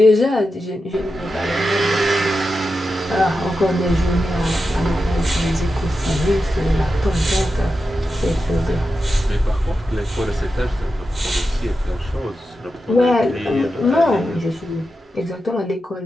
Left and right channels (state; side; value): normal; both; correlation 0.90